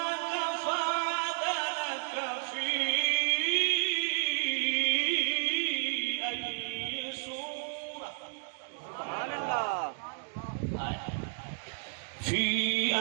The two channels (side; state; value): left; silent; digital silence